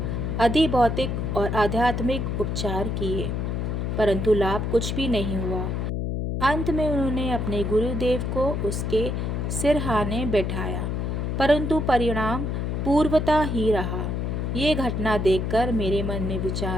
अधिभौतिक और आध्यात्मिक उपचार किए, परंतु लाभ कुछ भी नहीं हुआ। अंत में उन्होंने अपने गुरुदेव को उसके सिरहाने बैठाया, परंतु परिणाम पूर्वता ही रहा। ये घटना देखकर मेरे मन में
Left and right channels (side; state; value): left; noise; hum, 1 dB below the sound